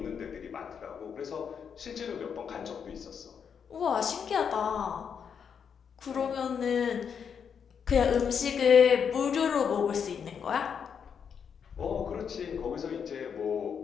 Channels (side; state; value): right; quieter; 7.1 dB